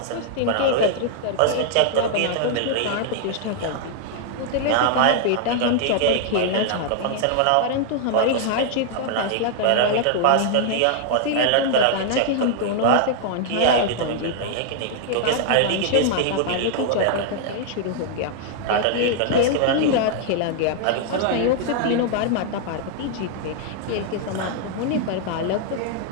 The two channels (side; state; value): both; different; correlation 0.00